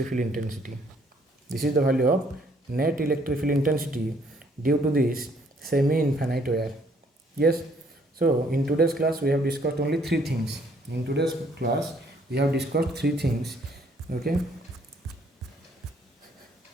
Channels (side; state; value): both; normal; correlation 0.64